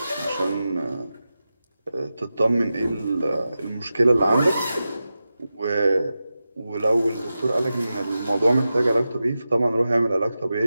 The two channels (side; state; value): both; inverted; correlation -0.92